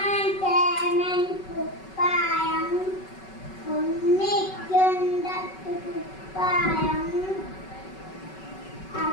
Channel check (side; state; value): right; late; 5.3 ms